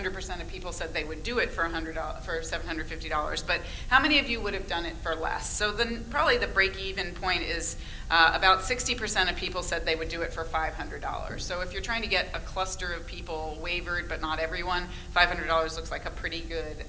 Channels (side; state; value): both; identical; correlation 1.00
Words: of people said they would do it for $750, but how many of you would have done it for less? So then probably the break-even point is about 60% of people said they would do it for $500. So if you're trying to get a cluster of people waivered, but not everyone, $500 looks like a pretty good